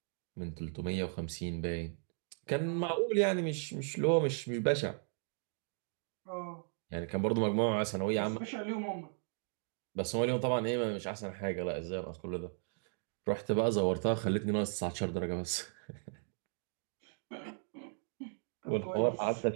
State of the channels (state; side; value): silent; left; 54 dB below the other